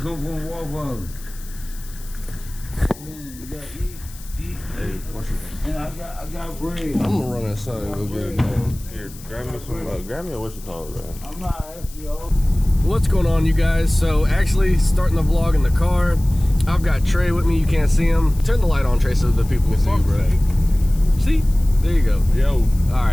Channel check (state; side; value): noise; left; hiss, 19 dB below the sound